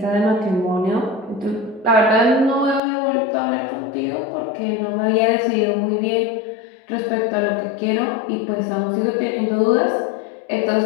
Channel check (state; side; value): drops out; right; at 2.8 s